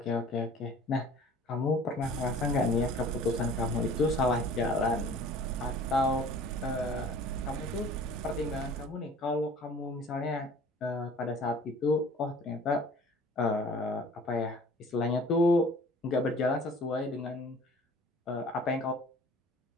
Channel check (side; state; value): both; normal; correlation 0.48